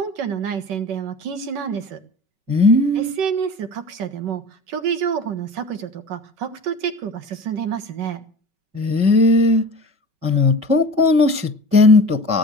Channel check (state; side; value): late; left; 5.3 ms